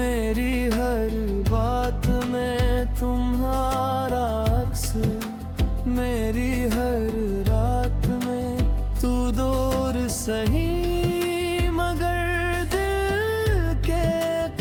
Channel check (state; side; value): identical; both; correlation 1.00